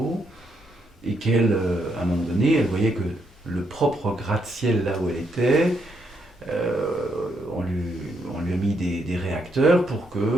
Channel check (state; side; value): normal; both; correlation 0.77